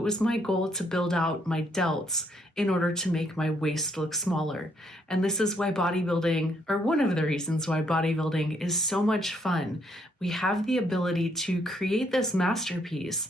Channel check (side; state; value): both; normal; correlation 0.71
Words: was my goal to build out my delts in order to make my waist look smaller. And this is why bodybuilding, or one of the reasons why bodybuilding is so much fun. We have the ability to create this masterpiece,